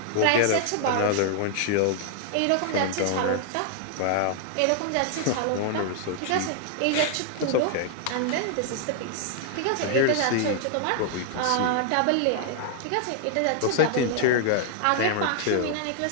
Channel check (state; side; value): different; both; correlation 0.00